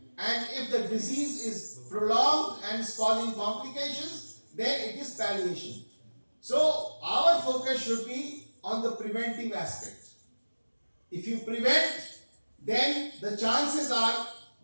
and if the disease is prolonged and is causing complications, then it is palliation. So our focus should be on the preventive aspect. If you prevent, then the chances are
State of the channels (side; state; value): both; inverted; correlation -1.00